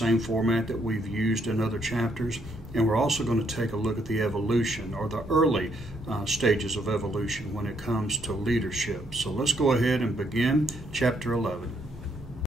format that we've used in other chapters, and we're also going to take a look at the evolution or the early stages of evolution when it comes to leadership. So let's go ahead and begin chapter 11.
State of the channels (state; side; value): normal; both; correlation 0.72